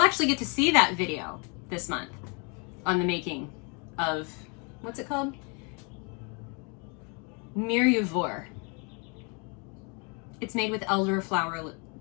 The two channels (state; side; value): quieter; right; 33.6 dB